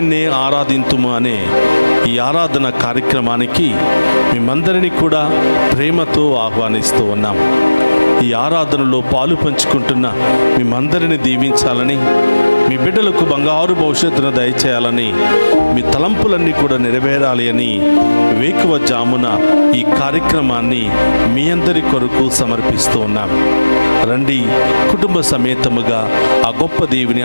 ఆరాధింతుము అనే ఈ ఆరాధన కార్యక్రమానికి మేమందరినీ కూడా ప్రేమతో ఆహ్వానిస్తూ ఉన్నాం. ఈ ఆరాధనలో పాలు పంచుకుంటున్న మేమందరినీ దీవించాలని, మీ బిడ్డలకు బంగారు భవిష్యత్తును దయచేయాలని, మీ తలంపులన్నీ కూడా నెరవేరాలి అని వేకువజామున ఈ కార్యక్రమాన్ని మీ అందరి కొరకు సమర్పిస్తూ ఉన్నాం. రండి, కుటుంబ సమేతముగా ఆ గొప్ప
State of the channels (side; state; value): both; inverted; correlation -1.00